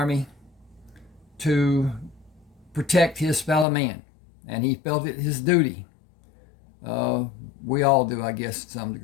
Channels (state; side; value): drops out; right; at 3.7 s